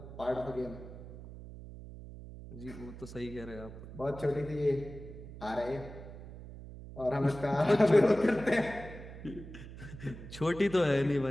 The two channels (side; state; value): right; noise; hum, 13 dB below the sound